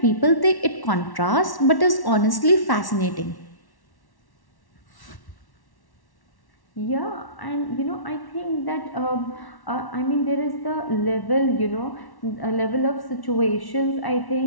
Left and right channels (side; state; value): right; late; 1.1 ms